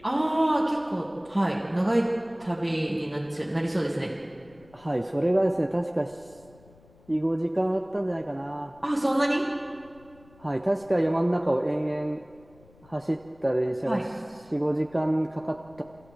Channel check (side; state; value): left; noise; rumble, 27 dB below the sound